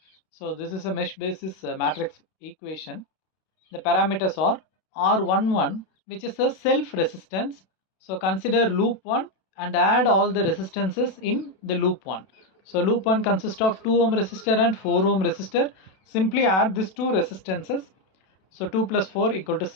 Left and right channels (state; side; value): late; right; 32 ms